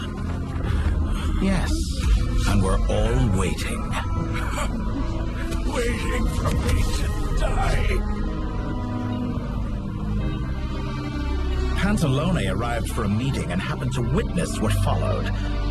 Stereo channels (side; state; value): both; identical; correlation 1.00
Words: Yes, and we're all waiting. Waiting for me to die. Pantalone arrived for a meeting and happened to witness what followed.